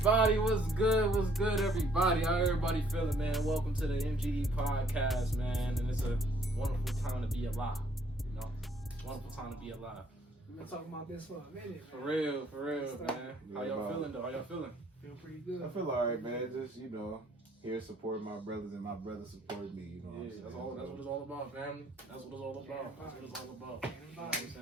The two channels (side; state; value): both; normal; correlation 0.63